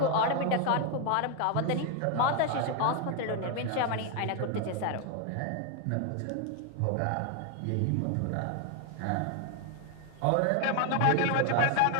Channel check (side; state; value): both; different; correlation 0.01